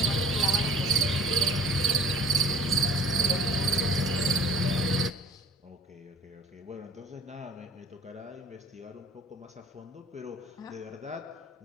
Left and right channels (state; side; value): normal; both; correlation 0.50